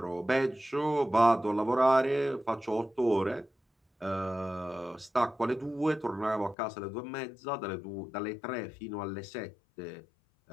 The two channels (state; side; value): drops out; right; at 6.6 s